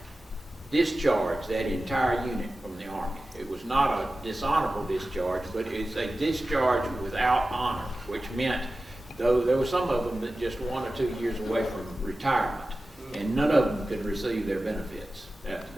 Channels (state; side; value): normal; both; correlation 0.95